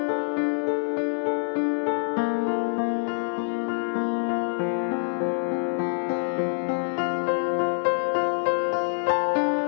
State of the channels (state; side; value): silent; right; digital silence